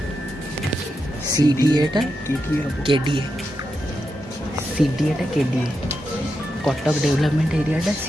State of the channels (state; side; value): normal; both; correlation 0.86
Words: सीडीए टा केडीए सीडीए टा केडीए कटक डेवलपमेंट एरिया टा